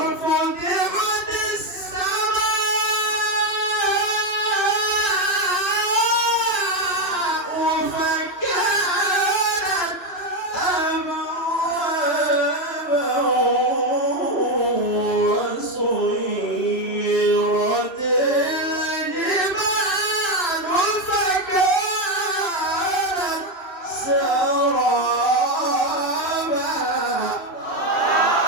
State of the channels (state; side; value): late; right; 2.9 ms